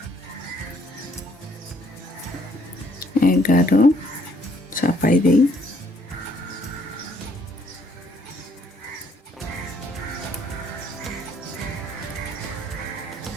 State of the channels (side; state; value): both; normal; correlation 0.66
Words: এগারো চাপাই দেই।